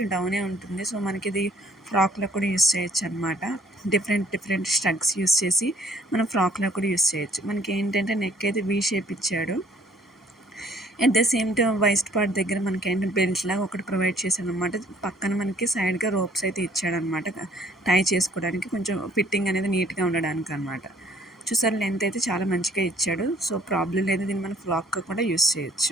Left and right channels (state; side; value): normal; both; correlation 0.59